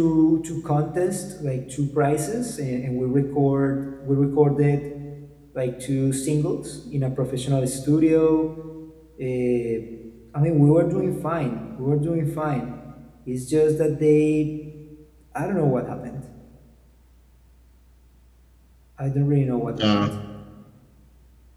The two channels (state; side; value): identical; both; correlation 1.00